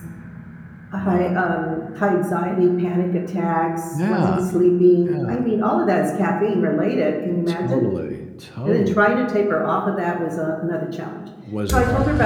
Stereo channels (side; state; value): both; identical; correlation 1.00